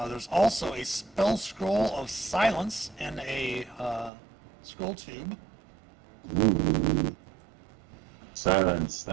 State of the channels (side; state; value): left; drops out; at 4.1 s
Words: There's also a spell scroll of silence in a scroll tube. Ooh. Silence.